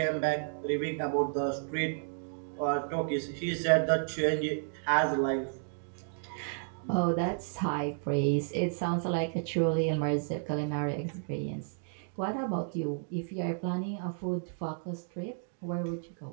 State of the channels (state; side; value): silent; left; digital silence